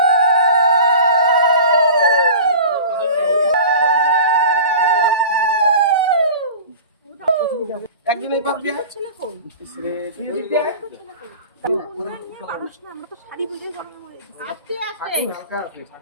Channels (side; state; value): both; inverted; correlation -0.38